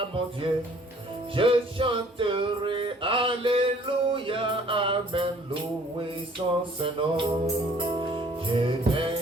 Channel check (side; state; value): both; normal; correlation 0.56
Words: mon Dieu. Je chanterai Alléluia, Amen, loué son Saint-Nom. Je